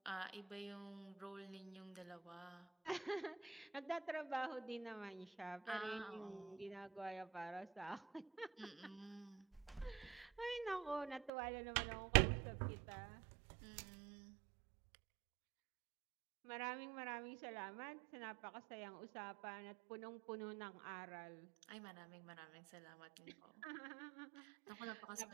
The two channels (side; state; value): left; drops out; at 11.3 s